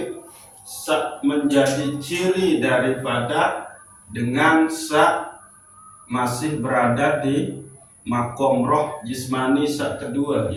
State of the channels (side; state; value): both; identical; correlation 1.00